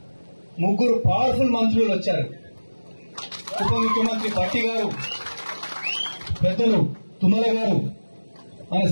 3 పవర్ఫుల్ మంత్రులు వచ్చారు. ఉప ముఖ్యమంత్రి భట్టి గారు, పెద్దలు తుమ్మల గారు, మన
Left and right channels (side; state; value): both; inverted; correlation -1.00